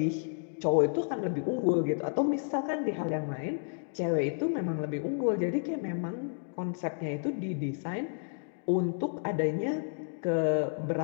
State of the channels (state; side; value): silent; right; digital silence